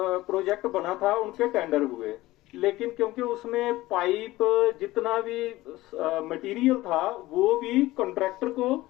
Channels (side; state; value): right; quieter; 17.9 dB